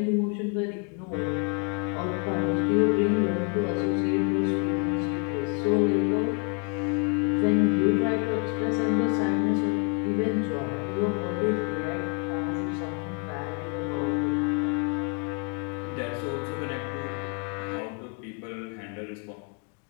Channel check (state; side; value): quieter; right; 35.6 dB